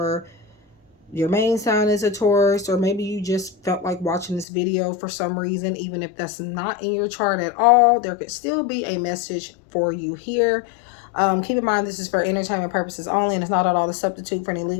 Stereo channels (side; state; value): right; drops out; at 4.5 s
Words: your main sign is a Taurus, or maybe you just felt like watching this video for some reason, even if that's not in your chart at all, there could still be a message for you here. Keep in mind this is for entertainment purposes only, and it's not at all a substitute for any